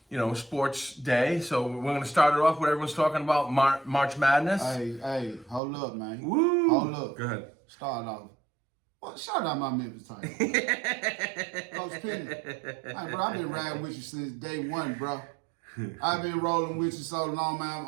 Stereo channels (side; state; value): left; drops out; at 5.6 s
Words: sports day. So we're gonna start it off with everyone's talking about March Madness. Hey, hold up, man. Woo! Hold up. Go ahead. Start off. Well, shout out my Memphis Tigers. Coach Penny. Hey, bro, I've been riding with you since day one, bro. I've been rolling with you so long, man.